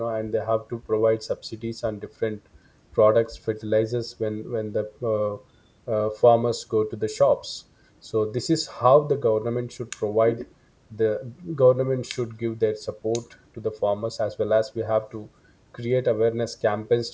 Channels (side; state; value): both; identical; correlation 1.00